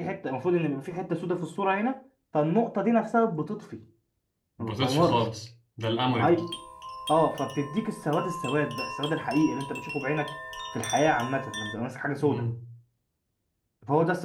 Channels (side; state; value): both; identical; correlation 1.00